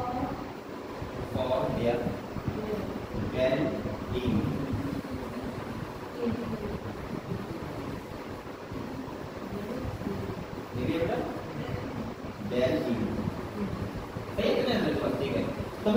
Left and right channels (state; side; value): identical; both; correlation 1.00